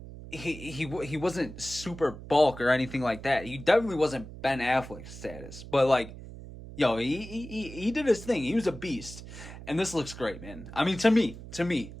he wasn't super bulk or anything like that. He definitely wasn't Ben Affleck status, but like, yo, he did his thing. He was a beast, and this looks great, man. I mean, to me,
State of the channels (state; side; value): noise; right; hum, 13 dB below the sound